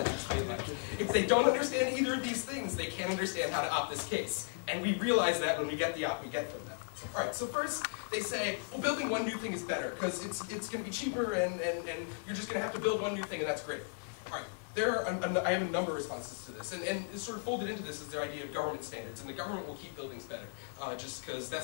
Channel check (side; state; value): right; silent; 54 dB below the other